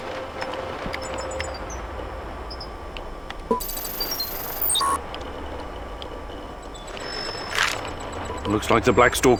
Looks like the Black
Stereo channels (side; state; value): both; identical; correlation 1.00